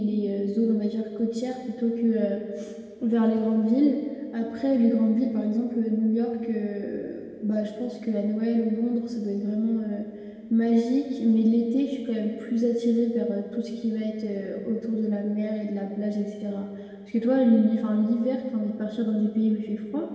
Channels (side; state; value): both; identical; correlation 1.00